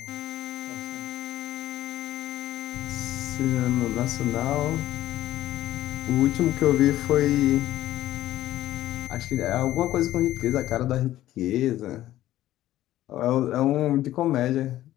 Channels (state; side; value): quieter; right; 14.1 dB